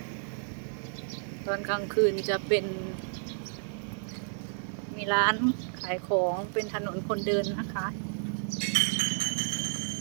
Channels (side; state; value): left; silent; digital silence